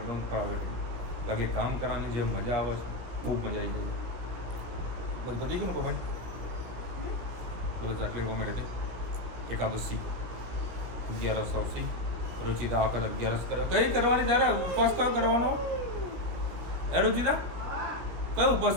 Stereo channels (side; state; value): left; late; 16 ms